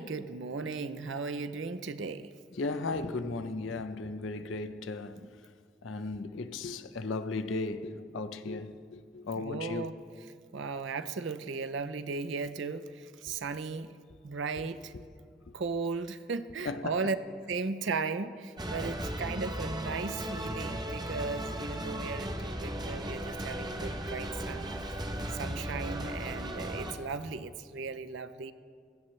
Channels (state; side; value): normal; both; correlation 0.31